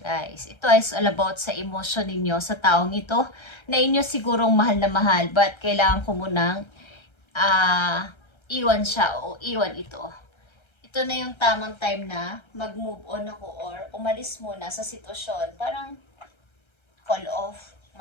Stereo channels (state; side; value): late; right; 1.3 ms